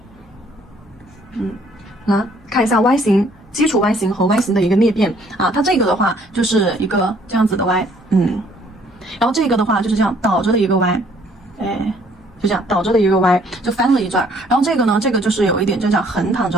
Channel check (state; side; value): noise; left; hum, 29 dB below the sound